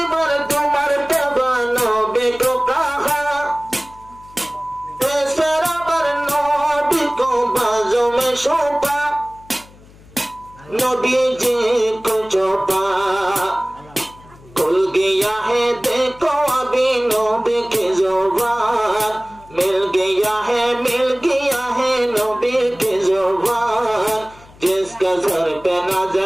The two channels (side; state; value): left; noise; hum, 24 dB below the sound